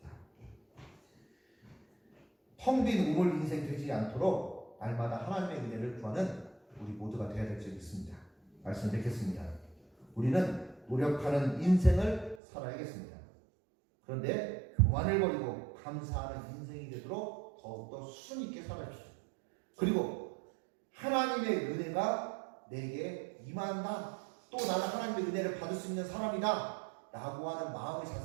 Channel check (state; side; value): drops out; left; at 12.4 s